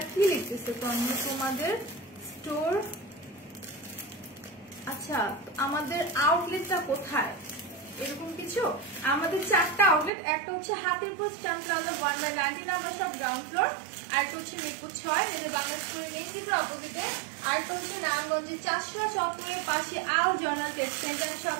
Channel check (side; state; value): left; drops out; at 10.1 s